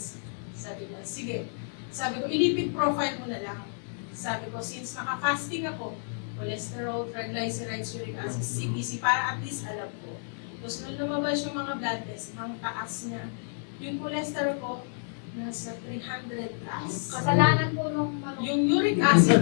Sabi niya, sige. Sabi ko, ilipid profile mo na lang. Sabi ko, since naka-fasting ako, cholesterol, triglycerides, uric acid, CBC, para at least alam ko. Tapos nung lumabas yung mga blood test, ang taas niya. Yung cholesterol ko, nasa 300 plus. Kasalanan po nung Yung uric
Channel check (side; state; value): right; silent; digital silence